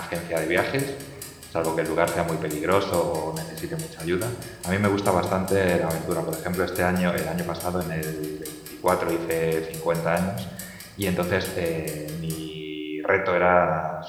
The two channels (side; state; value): both; identical; correlation 1.00